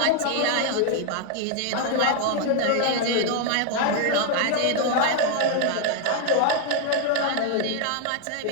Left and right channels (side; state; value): both; different; correlation 0.00